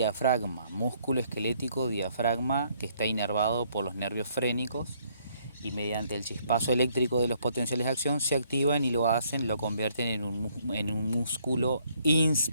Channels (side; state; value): both; inverted; correlation -0.68